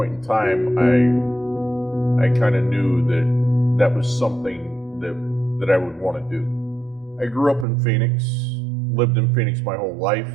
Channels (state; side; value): drops out; left; at 7.7 s